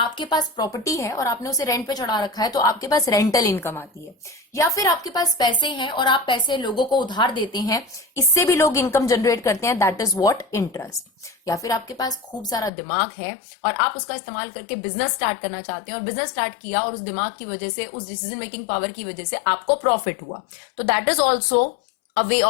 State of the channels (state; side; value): drops out; right; at 12.7 s